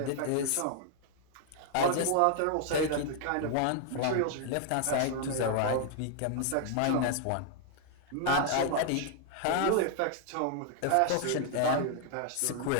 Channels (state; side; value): different; both; correlation 0.00